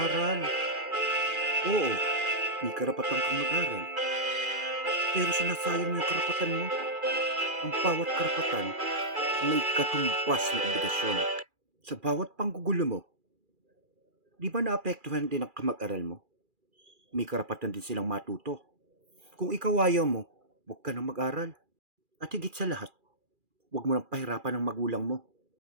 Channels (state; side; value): late; left; 2.4 ms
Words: Oo, may karapatan kang mag-aral, pero sinasayang mo yung karapatan mo. Ang bawat karapatan may katumbas na obligasyon. Sa bawat panggugulo mo, di ba naapektuhan din ang kamag-aral mo? May karapatan din silang matuto. Kung ikaw ayaw mo, huwag ka nang mag-aral. At higit sa lahat, huwag mo nang pahirapan ang magulang mo.